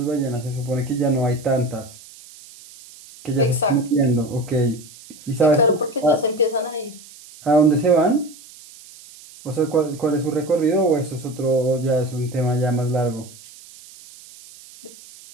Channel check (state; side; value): noise; right; hiss, 20 dB below the sound